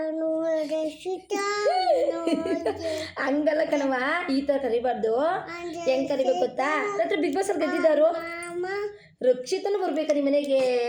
ಹಂಗಲ್ಲ ಕಣವ, ಈ ಥರ ಕರಿಬಾರ್ದು. ಹೆಂಗ್ ಕರಿಬೇಕು ಗೊತ್ತಾ? ರಾತ್ರಿ ಬಿಗ್ ಬಾಸ್ ಅಲ್ಲಿ ಗೆದ್ದಿದ್ದಾರು ರಕ್ಷಿತನು ಬರ್ಬೇಕಾ ನಿಮ್ಮ ಮನೆಗೆ?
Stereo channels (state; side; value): identical; both; correlation 1.00